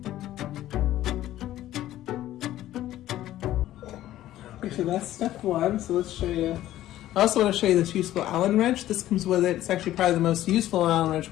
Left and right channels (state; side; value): quieter; right; 13.8 dB